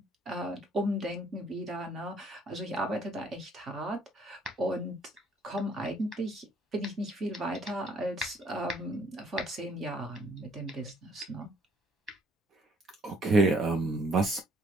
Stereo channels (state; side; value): normal; both; correlation 0.63